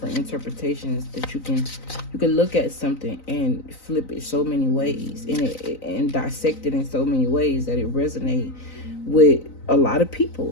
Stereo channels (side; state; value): right; late; 3.9 ms